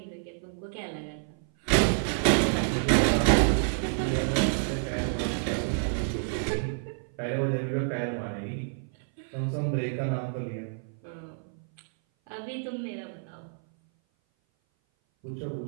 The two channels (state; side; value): silent; left; 57 dB below the other